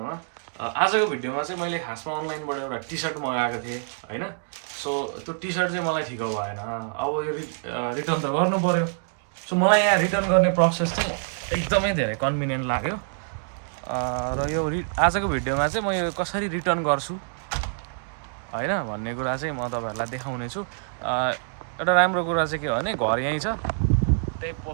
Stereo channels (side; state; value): left; silent; digital silence